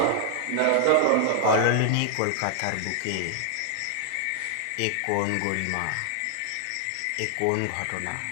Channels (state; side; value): different; both; correlation 0.00